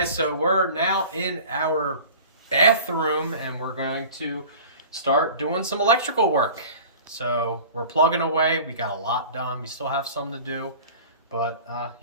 so we're now in our bathroom and we're going to start doing some electrical work. So we're plugging away. We got a lot done. We still have some to do, but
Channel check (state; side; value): inverted; both; correlation -0.41